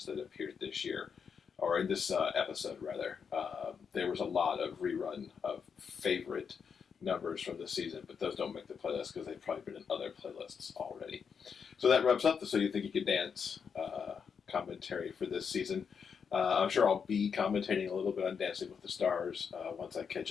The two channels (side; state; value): right; quieter; 6.5 dB